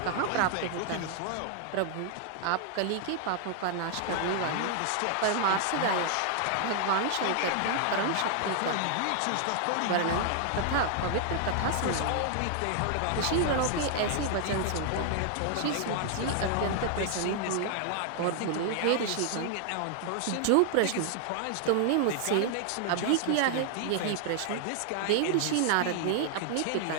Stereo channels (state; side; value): different; both; correlation 0.00